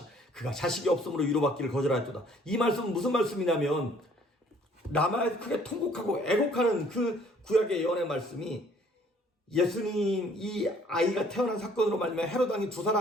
그가 자식이 없으므로 위로받기를 거절하였도다. 이 말씀은 무슨 말씀이냐면 라마에서 크게 통곡하고 애곡하는 그 구약의 예언의 말씀이 예수님 이 아이가 태어난 사건으로 말미암아 헤롯 왕이 2살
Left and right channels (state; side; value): normal; both; correlation 0.59